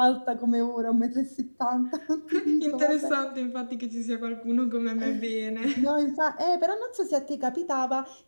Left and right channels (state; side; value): inverted; both; correlation -1.00